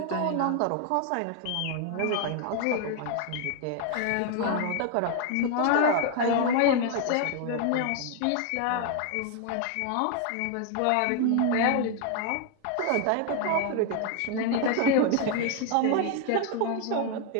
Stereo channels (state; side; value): different; both; correlation 0.00